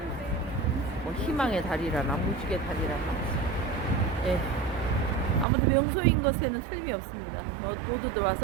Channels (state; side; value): drops out; left; at 5.5 s